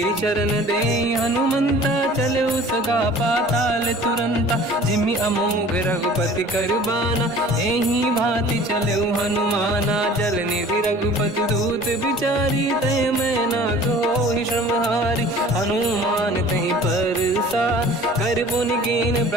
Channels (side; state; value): both; normal; correlation 0.46